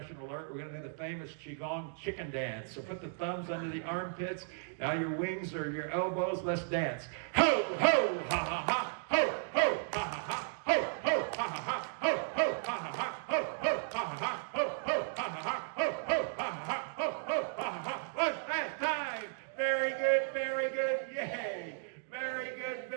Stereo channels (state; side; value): silent; left; digital silence